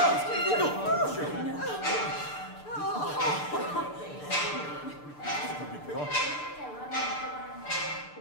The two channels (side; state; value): right; late; 6.8 ms